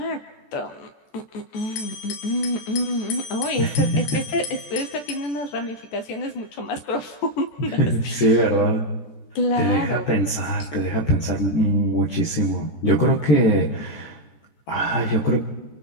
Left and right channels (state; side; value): late; right; 14 ms